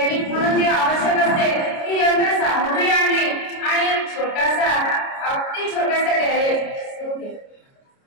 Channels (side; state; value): right; late; 29 ms